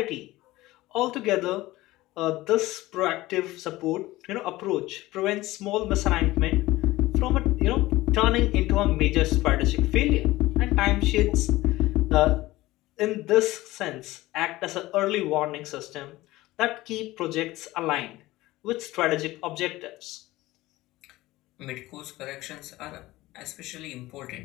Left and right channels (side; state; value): right; quieter; 18.1 dB